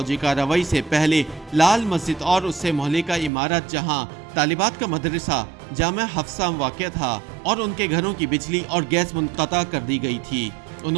کارروائی سے پہلے لال مسجد اور اس سے مہلکہ عمارت جہاں طالبات کا مدرسہ جامعہ حفصہ واقع تھا اور ان کے گھروں کی بجلی اور گیس منقطع کر دی گئی تھی۔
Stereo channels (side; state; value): left; drops out; at 3.3 s